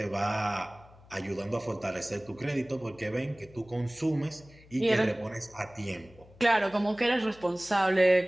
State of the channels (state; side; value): noise; left; hum, 24 dB below the sound